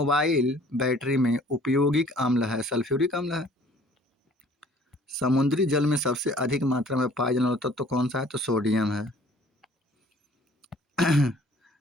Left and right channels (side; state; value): both; normal; correlation 0.54